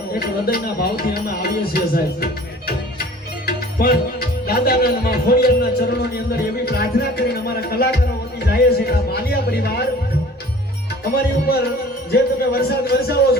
એક હૃદયના ભાવથી અમે આવીએ છીએ સાહેબ પણ દાદાના ખોડિયારના ચરણોની અંદર એવી પ્રાર્થના કરીને અમારા કલાકારો વતી જાય છે કે આ માલિયા પરિવાર અમારી ઉપર જે તમે વરસાદ વરસાવો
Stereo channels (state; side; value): normal; both; correlation 0.47